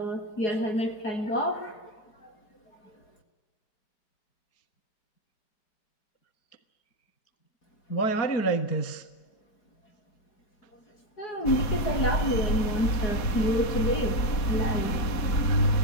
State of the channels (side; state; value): right; late; 4.2 ms